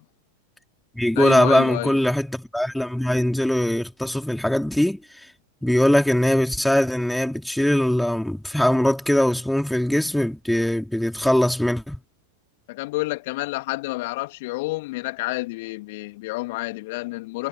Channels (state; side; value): normal; both; correlation 0.91